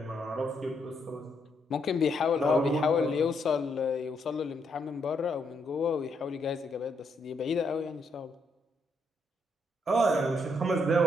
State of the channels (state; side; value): normal; both; correlation 0.76